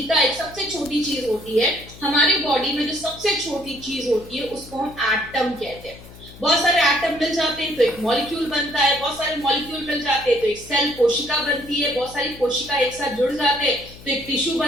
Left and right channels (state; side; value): noise; left; hum, 19 dB below the sound